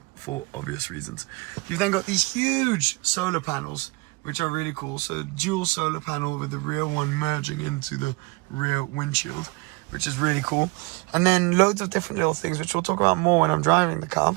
for obvious reasons. You've then got these huge solar panels, which are really cool. So dual solar panel with the rear one merging into the rear windshield, which is really cool. And then loads of different little things, which we'll talk about more when I'm driving the car,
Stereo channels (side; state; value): left; quieter; 27.2 dB